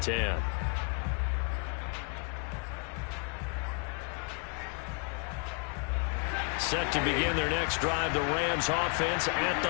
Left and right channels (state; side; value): quieter; right; 37.7 dB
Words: 10. Set to begin their next drive, the Rams offense at